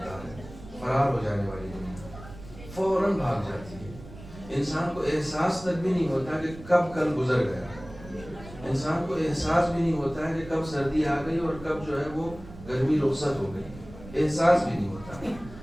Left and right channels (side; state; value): right; noise; rumble, 16 dB below the sound